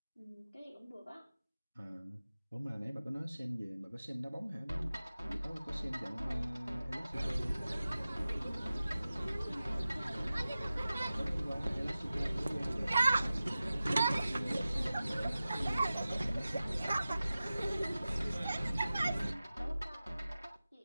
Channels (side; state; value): both; inverted; correlation -0.95